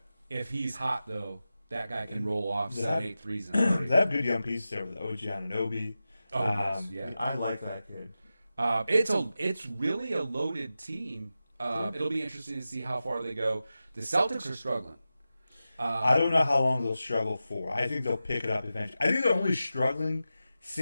If he's hot though, that guy can roll off 7-8 threes in a night. They have good young pieces there with OG Anunoby. Yes, yeah. I like that kid. It's really a loaded team. It'll be interesting to see how far they go. The Celtics are struggling. I don't know how long they'll struggle for. I think they'll pick it up eventually. I think they're only struggling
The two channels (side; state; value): both; inverted; correlation -0.93